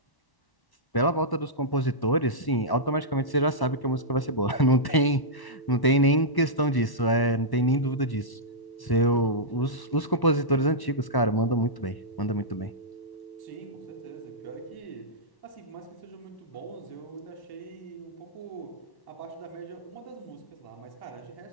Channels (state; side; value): late; right; 1.1 ms